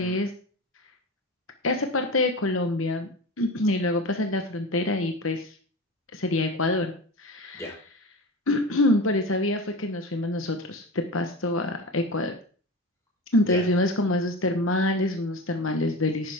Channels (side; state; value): both; normal; correlation 0.28